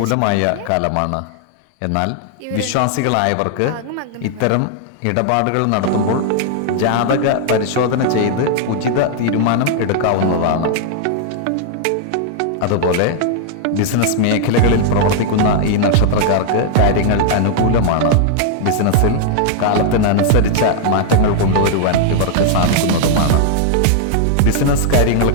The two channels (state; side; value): different; both; correlation -0.01